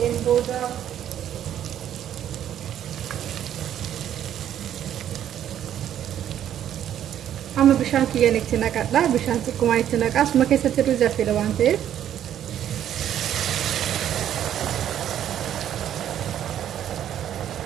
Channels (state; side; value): quieter; left; 10.6 dB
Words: booda amma bishaan kiyyaan itti naqadha. Bishaan xiqqoomaan itti naqaa. Asuma keessatti ruuzi affeela waan ta'eef.